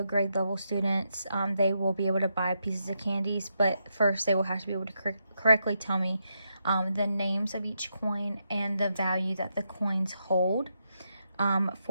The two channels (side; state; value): both; inverted; correlation -0.82